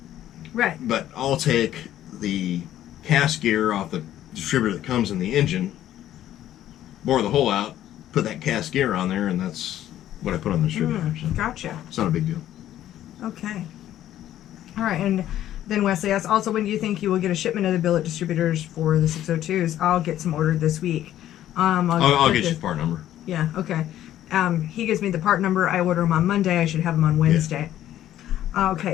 Right. But I'll take the cast gear off the distributor that comes in the engine, bore the hole out, put that cast gear on there, and that's what I put on the distributor. So Gotcha. it's not a big deal. Okay. All right, and then Wesley asks, also, when do you think you will get a shipment of the billet distributors for the 602s? I'll get some ordered this week. I'll get you the part number. Yeah, okay. He gives me the part number. I order them on Monday. I should have them on Wednesday. Yeah.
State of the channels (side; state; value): right; quieter; 12.4 dB